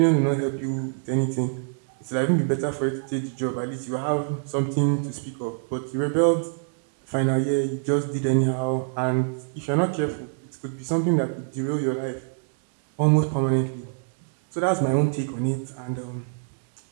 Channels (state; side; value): silent; left; digital silence